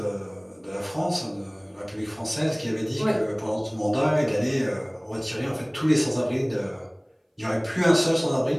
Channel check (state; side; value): identical; both; correlation 1.00